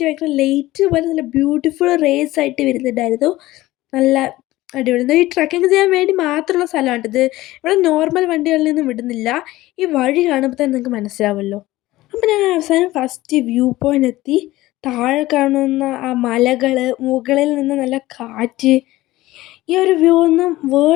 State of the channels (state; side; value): quieter; right; 17.4 dB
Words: ഭയങ്കര ലൈറ്റ് പോലെ നല്ല ബ്യൂട്ടിഫുൾ റേസ് ആയിട്ട് വരുന്നുണ്ടായിരുന്നു. നല്ല അടിപൊളി. ഈ ട്രക്കിങ് ചെയ്യാൻ വേണ്ടി മാത്രമുള്ള സ്ഥലമാണ് ഇത്. ഇവിടെ നോർമൽ വണ്ടികളിൽ നിന്നും വിടുന്നില്ല. ഈ വഴി കാണുമ്പോൾ തന്നെ നിങ്ങൾക്ക് മനസ്സിലാവുമല്ലോ. അപ്പം ഞാൻ അവസാനം ഫസ്റ്റ് വ്യൂ പോയിൻ്റ് എത്തി. താഴെ കാണുന്ന ആ മലകൾ, മുകളിൽ നിന്ന് നല്ല കാറ്റ്, ഈ ഒരു വ്യൂ ഒന്നും